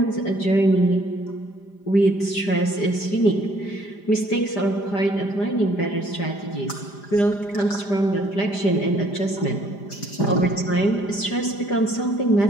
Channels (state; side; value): late; right; 5.0 ms